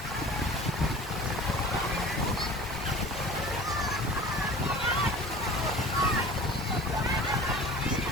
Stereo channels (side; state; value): both; normal; correlation 0.41